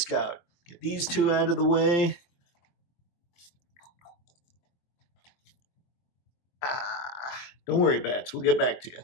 Get these two out of the way. Don't worry, Bats, we'll get back to you.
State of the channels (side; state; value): right; late; 23 ms